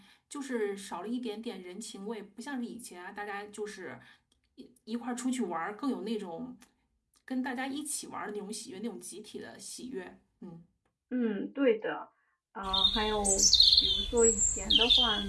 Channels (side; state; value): both; identical; correlation 1.00